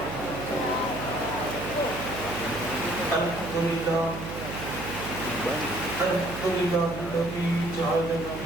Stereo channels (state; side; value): noise; right; hum, 9 dB below the sound